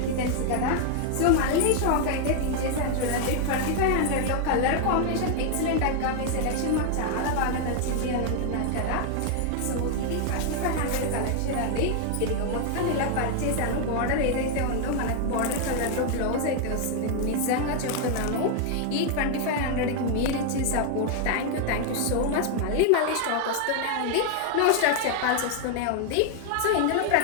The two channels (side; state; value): both; different; correlation 0.00